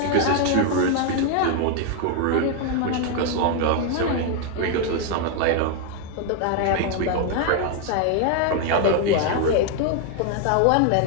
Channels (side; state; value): both; different; correlation 0.00